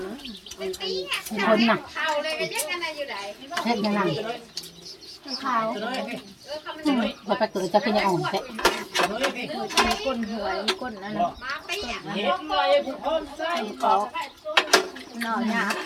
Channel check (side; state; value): both; identical; correlation 1.00